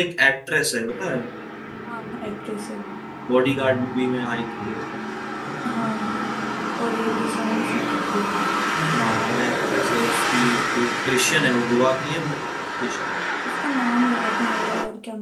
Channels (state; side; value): identical; both; correlation 1.00